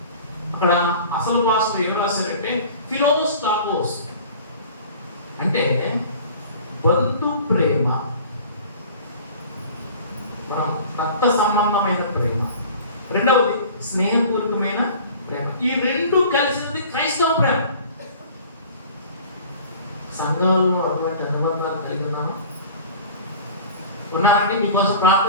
అక్కడ అసలు భాషలో ఏం రాశారంటే ఫిలోస్టాగోస్ అంటే బంధు ప్రేమ, రక్త సంబంధమైన ప్రేమ. రెండవది స్నేహపూర్వకమైన ప్రేమ. ఈ రెండు కలిసినది క్రైస్తవ ప్రేమ. సంఘాలలో అటువంటి అనుబంధాలు కలిగి ఉన్నాను. ఉన్నారంటే మీకోసం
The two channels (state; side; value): inverted; both; correlation -0.43